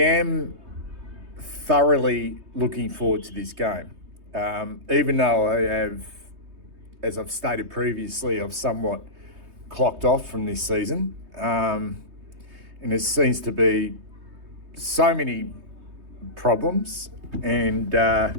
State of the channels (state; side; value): late; left; 3.2 ms